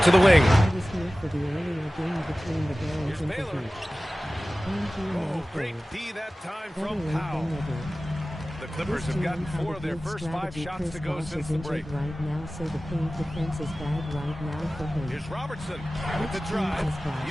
to the wing. I was here for the earlier game between the Barons and the Heat. Great D that time Better from late Powell. than never. The Clippers have gotten 4 of their first 5 shots to go since the break. Right now, so the paint defense is bad right now for him. Here's Robertson with the drive.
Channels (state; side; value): normal; both; correlation 0.97